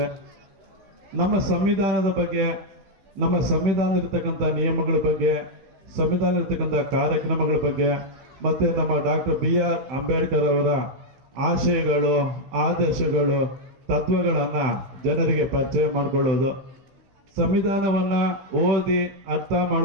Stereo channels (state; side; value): late; left; 16 ms